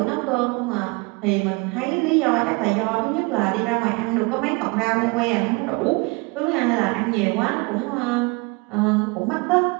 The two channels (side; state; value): left; quieter; 27.7 dB